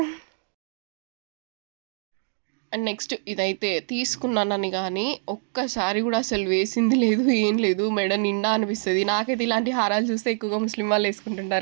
అండ్ నెక్స్ట్ ఇదైతే తీసుకున్నానని గానీ, ఒక్కసారి గూడా అసలు వేసింది లేదు, ఏం లేదు. మెడ నిండా అనిపిస్తది. నాకైతే ఇలాంటి హారాలు చూస్తే ఎక్కువగా ముస్లిం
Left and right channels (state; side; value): silent; left; digital silence